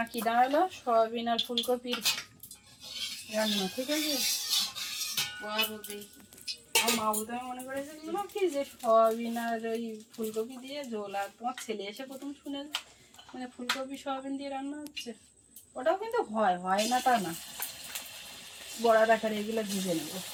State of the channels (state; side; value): identical; both; correlation 1.00